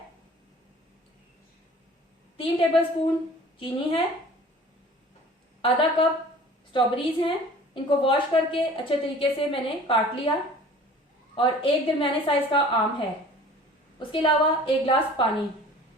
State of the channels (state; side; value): normal; both; correlation 0.46